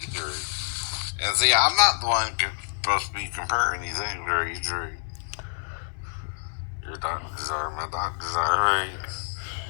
Right. And see, I'm not the one supposed to be comparing these things, right? Your doctors are, my doctors are, right?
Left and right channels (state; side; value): silent; right; 60 dB below the other